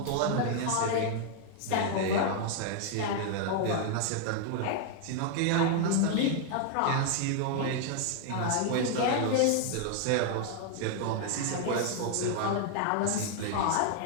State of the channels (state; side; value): different; both; correlation 0.00